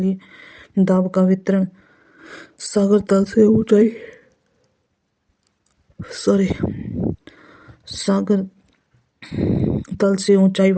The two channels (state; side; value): identical; both; correlation 1.00